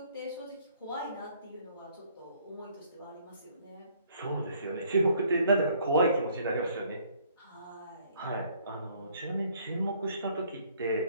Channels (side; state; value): both; inverted; correlation -0.62